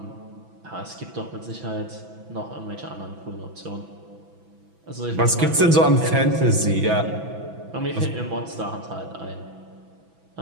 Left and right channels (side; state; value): left; late; 6.0 ms